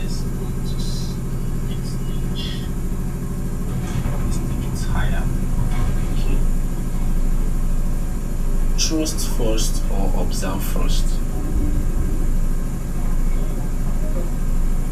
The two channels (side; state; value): both; identical; correlation 1.00